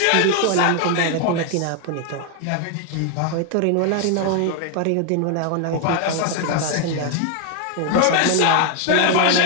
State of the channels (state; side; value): different; both; correlation 0.01